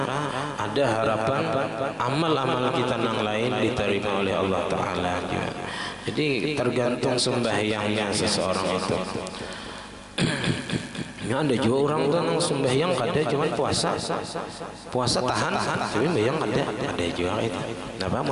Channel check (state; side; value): identical; both; correlation 1.00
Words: ada harapan amal-amal kita yang lain diterima oleh Allah Ta'ala. Jadi tergantung sembahyangnya seseorang itu. Ya, ada juga orang tuh nang sembahyang kada cuma puasa tahan tapi sembahyang ada juga itu. Napa